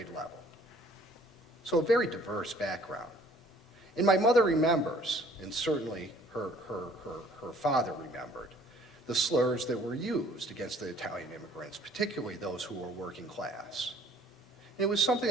level. So a very diverse background. And my mother remembers, and certainly her father remembered, the slurs that were used against the Italian immigrants, particularly those who were working class. And it was something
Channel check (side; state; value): both; normal; correlation 0.57